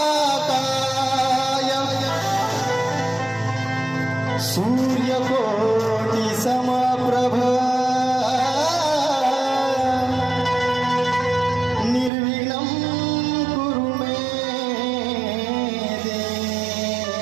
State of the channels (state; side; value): drops out; left; at 12.1 s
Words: सूर्यकोटि समप्रभ निर्विघ्नं कुरु मे